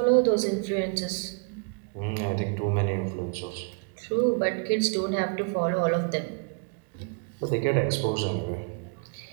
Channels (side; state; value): left; quieter; 33.5 dB